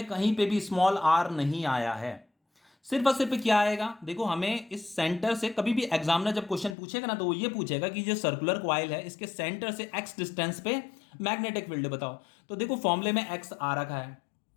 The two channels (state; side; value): drops out; right; at 6.8 s